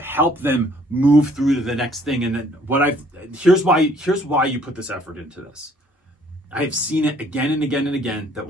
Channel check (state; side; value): normal; both; correlation 0.60